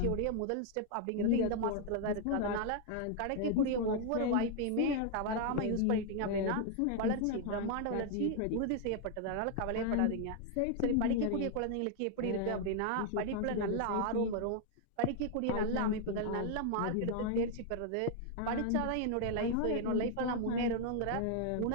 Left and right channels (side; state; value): both; different; correlation 0.00